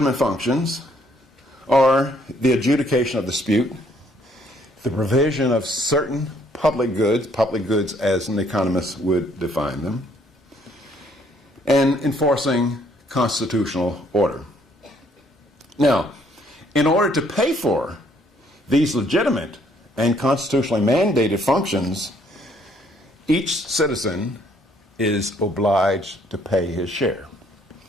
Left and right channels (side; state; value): both; normal; correlation 0.66